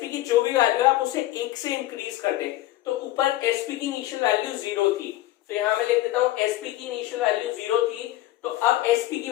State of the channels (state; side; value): quieter; right; 15.4 dB